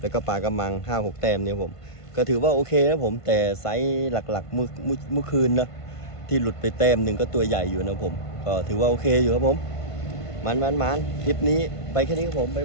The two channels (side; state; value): right; late; 1.5 ms